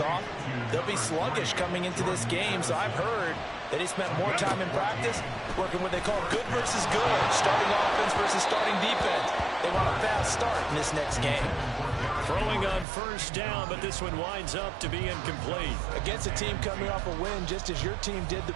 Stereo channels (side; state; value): left; drops out; at 12.9 s